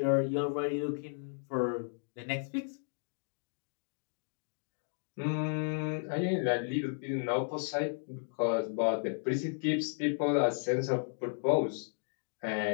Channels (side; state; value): right; silent; digital silence